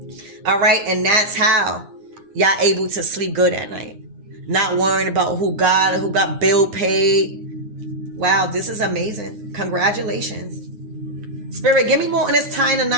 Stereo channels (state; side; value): late; left; 9.7 ms